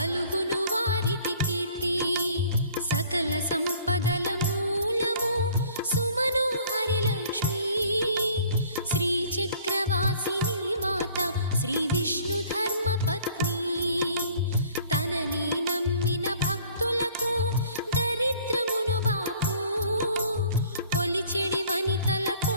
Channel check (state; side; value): inverted; both; correlation -0.53